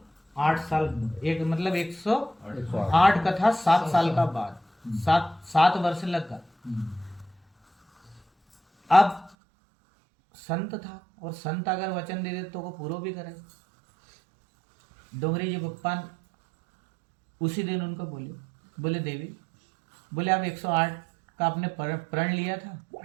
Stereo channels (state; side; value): drops out; left; at 9.3 s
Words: साल, एक मतलब 108 कथा 7 साल का बाद, 7 वर्ष लगा। अब संत था, और संत अगर वचन दे दे तो वो पूरा भी करे। डोंगरी जी बप्पा उसी दिन उनको बोले देवी, बोले अब 108 का आपने प्रण लिया था,